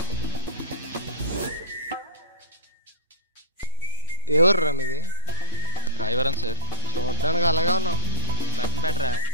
ఎవర్రా మీది? రాయవరం సార్. చూడడానికి అలాగే ఉన్నావు. బటన్ పెట్టరా.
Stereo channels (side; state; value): both; inverted; correlation -0.45